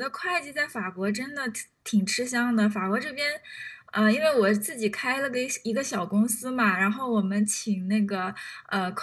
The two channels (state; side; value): identical; both; correlation 1.00